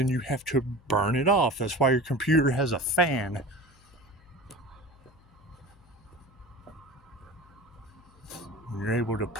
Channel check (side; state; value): left; noise; hum, 27 dB below the sound